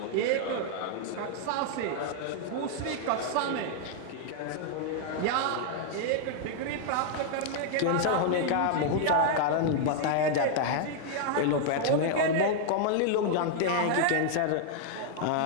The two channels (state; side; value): different; both; correlation -0.01